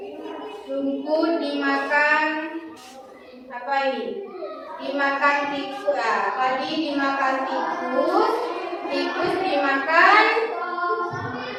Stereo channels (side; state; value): both; identical; correlation 1.00